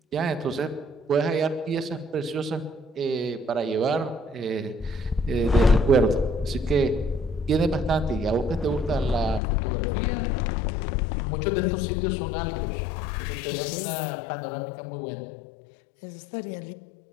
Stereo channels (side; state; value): right; drops out; at 9.4 s